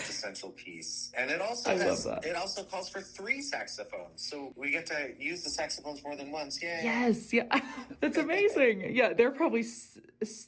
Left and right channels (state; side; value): identical; both; correlation 1.00